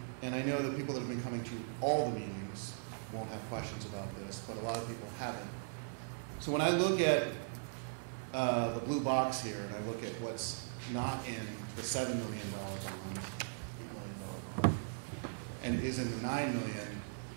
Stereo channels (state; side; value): silent; left; digital silence